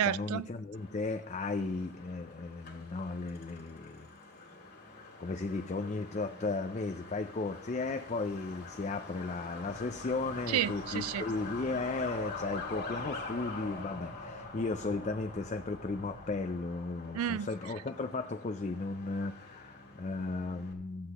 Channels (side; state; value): both; normal; correlation 0.37